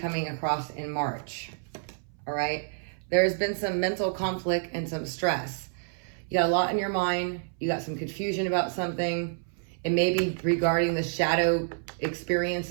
across in March. All right. There's been some mental conflict and some stress. You got a lot in your mind. You got some confusion about something. It may be regarding the shadow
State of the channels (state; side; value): silent; left; 59 dB below the other